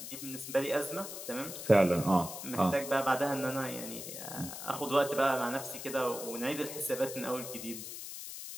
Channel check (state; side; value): noise; left; hiss, 9 dB below the sound